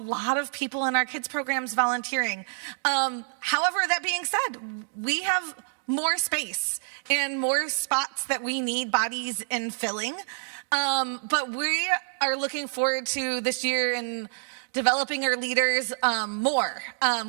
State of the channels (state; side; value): silent; left; 58 dB below the other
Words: of people in our kids programs volunteering. However, that being said, we have more space and more spots that we need bodies in filling. But we are looking forward to this year and developing our leaders more.